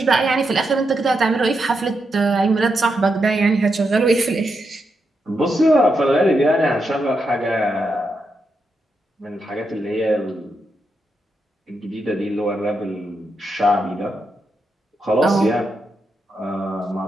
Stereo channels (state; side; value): normal; both; correlation 0.84